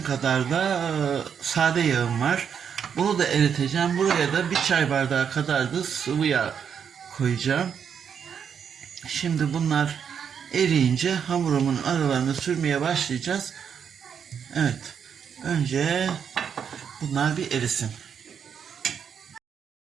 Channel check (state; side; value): quieter; left; 7.5 dB